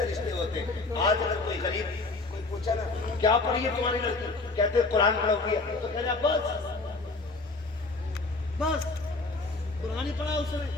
رشتے ہوتے ہیں۔ آج اگر کوئی غریب کوئی پوچھا نا کیا پڑھی ہے تمہاری لڑکی، کہتے قرآن پڑھا ہوئی ہے، تو کہنا بس قرآن ہی پڑھا اس نے،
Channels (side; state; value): right; quieter; 3.5 dB